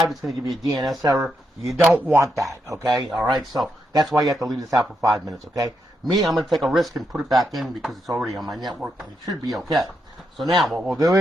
it's going to give you a DNS error. You don't want that, okay? All right, so that's why you have to leave this out for 5 minutes, okay? Me, I'm going to take a risk and put it back in because it's already on my network, and it should be okay. So now, what we'll do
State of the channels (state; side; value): normal; both; correlation 0.82